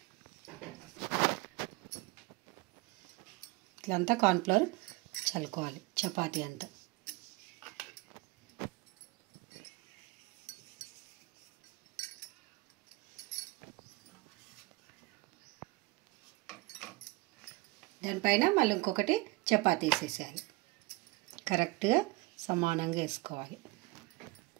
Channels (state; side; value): quieter; left; 23.0 dB